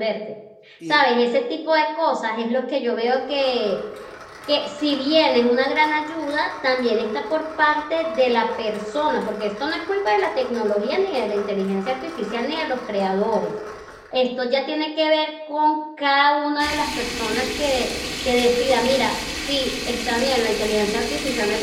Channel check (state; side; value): identical; both; correlation 1.00